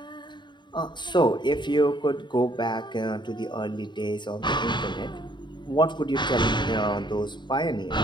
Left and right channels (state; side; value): late; right; 0.22 ms